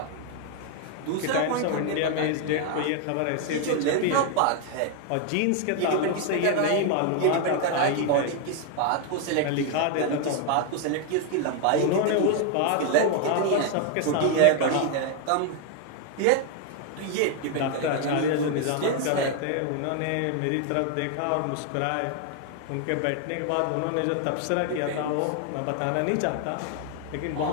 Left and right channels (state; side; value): different; both; correlation 0.01